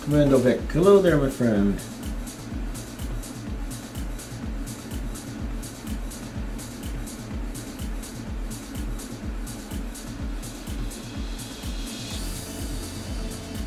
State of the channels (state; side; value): identical; both; correlation 1.00